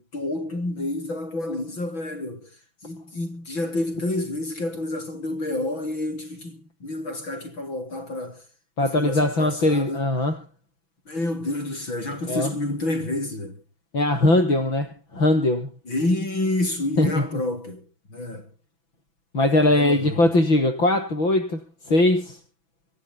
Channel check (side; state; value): right; late; 6.0 ms